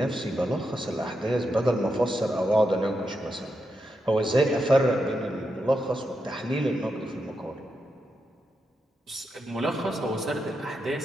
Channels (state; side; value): normal; both; correlation 0.85